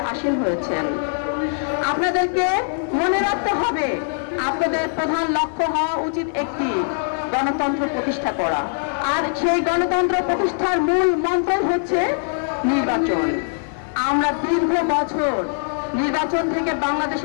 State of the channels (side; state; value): right; silent; digital silence